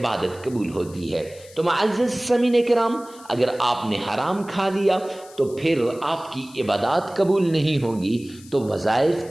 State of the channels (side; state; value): left; noise; hiss, 22 dB below the sound